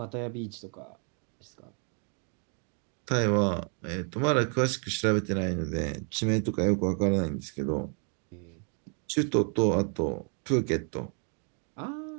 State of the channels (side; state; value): left; quieter; 39.7 dB